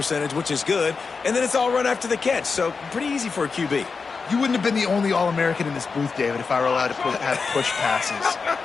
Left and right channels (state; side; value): quieter; right; 4.9 dB